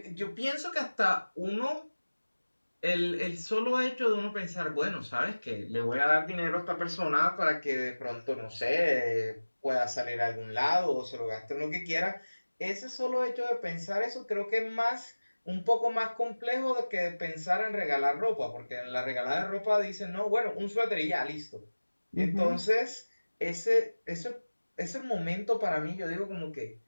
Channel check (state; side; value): inverted; both; correlation -1.00